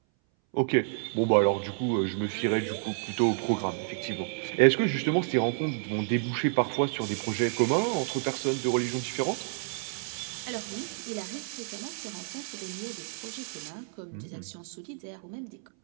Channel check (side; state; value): left; silent; 58 dB below the other